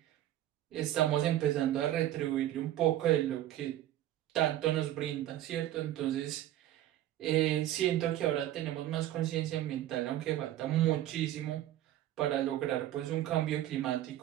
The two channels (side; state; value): left; quieter; 13.3 dB